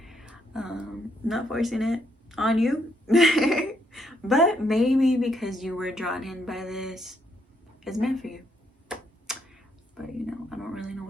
Not forcing it on you. But maybe because you were drawn in by this, it's meant for you. But you know, I don't really know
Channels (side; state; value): both; normal; correlation 0.74